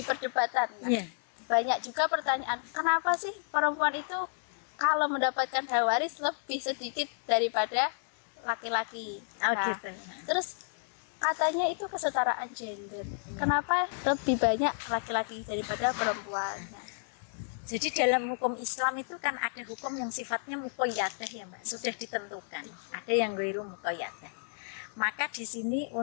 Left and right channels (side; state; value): right; silent; 57 dB below the other